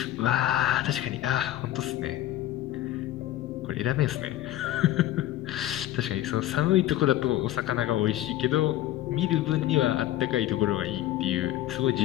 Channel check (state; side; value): quieter; right; 14.0 dB